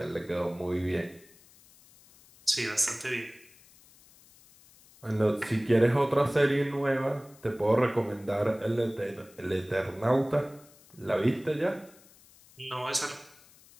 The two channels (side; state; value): left; noise; hiss, 26 dB below the sound